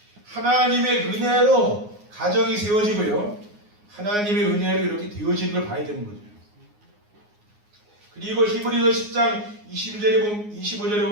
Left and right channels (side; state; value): left; late; 9.6 ms